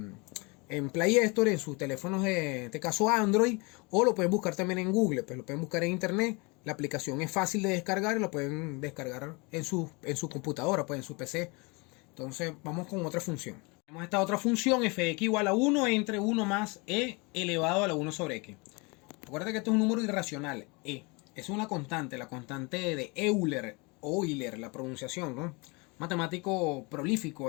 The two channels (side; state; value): right; quieter; 28.3 dB